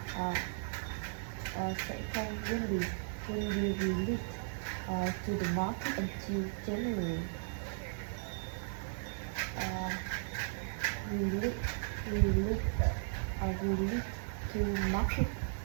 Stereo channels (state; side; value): silent; left; digital silence